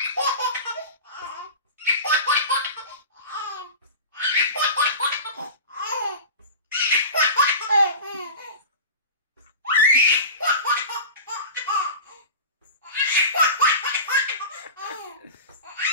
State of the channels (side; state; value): both; inverted; correlation -0.32